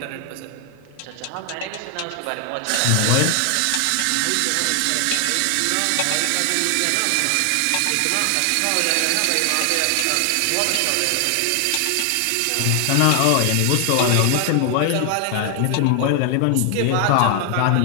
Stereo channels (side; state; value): both; different; correlation 0.00